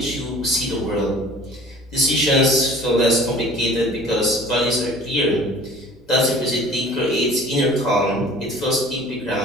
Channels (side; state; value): both; normal; correlation 0.47